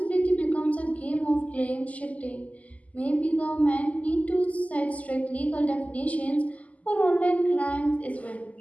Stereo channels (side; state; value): right; late; 0.073 ms